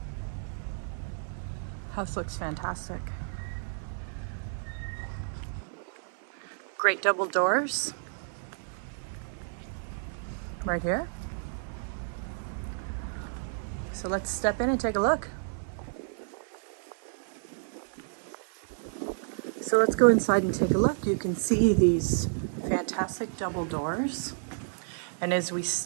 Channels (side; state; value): left; silent; 57 dB below the other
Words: House looks fantastic. Great double doors right here. So let's step in and take a look. So let's go inside and take a look. You can see these fantastic double doors. And as we